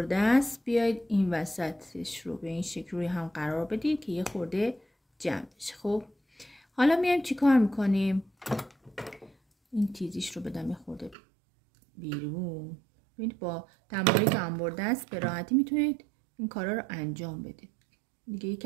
دست بیاید این وسطش رو به این شکل روی هم قرار بدید که یه خورده جمع بشه. خب حالا میایم چی کار میکنیم؟ این تیزیش رو بدم یه خورده بیرون. ببینید با تمایلی انبر دست به راحتی میتونید این کارا رو انجام بدید. دیگه یکی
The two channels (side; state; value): left; drops out; at 11.2 s